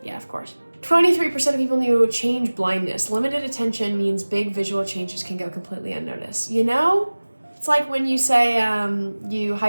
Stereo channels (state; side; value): inverted; both; correlation -1.00